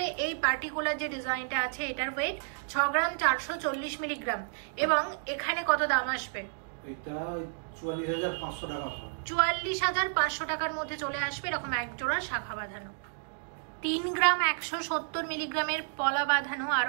এই পার্টিকুলার যে ডিজাইনটা আছে এটার ওয়েট 6 গ্রাম 440 মিলিগ্রাম, এবং এখানে কত দাম আসবে? এটা 44,500 টাকা। 44,500 টাকার মধ্যে চলে আসবে এরকম এক জোড়া শাখা বাঁধানো। 3 গ্রাম 170 মিলিগ্রামের পলা বাঁধানো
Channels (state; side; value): silent; left; digital silence